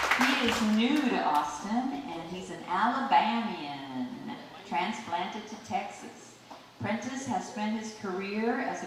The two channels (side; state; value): both; identical; correlation 1.00